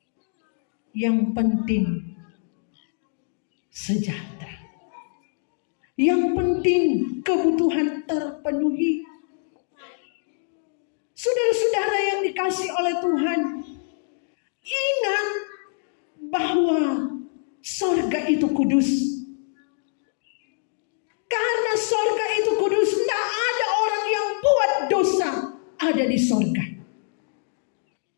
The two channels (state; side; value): silent; right; digital silence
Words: Yang penting sejahtera. Yang penting kebutuhan terpenuhi. Saudara-saudara yang dikasihi oleh Tuhan, ingat bahwa sorga itu kudus. Karena sorga itu kudus, tidak ada orang yang buat dosa ada di sorga.